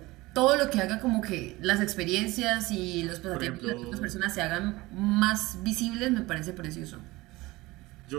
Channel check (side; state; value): left; quieter; 20.5 dB